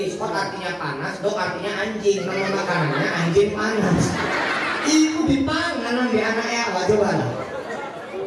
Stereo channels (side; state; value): both; identical; correlation 1.00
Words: Hot artinya panas, dog artinya anjing. Nama makanannya anjing panas. Ibu dipangan di anaknya apa coba?